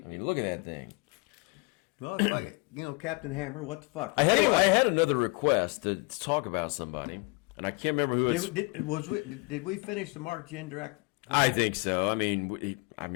mean, look at that thing. Well, it's like, Captain Hammer, what the fuck? I Anyway, had another request to talk about somebody, and I can't remember who it's. did we finish the Mark Jindrak? I think so. I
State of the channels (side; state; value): right; quieter; 28.0 dB